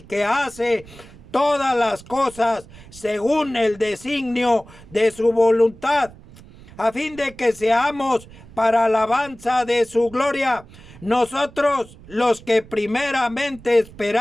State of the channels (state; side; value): noise; right; rumble, 21 dB below the sound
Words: que hace todas las cosas según el designio de su voluntad, a fin de que seamos para alabanza de su gloria, nosotros los que primeramente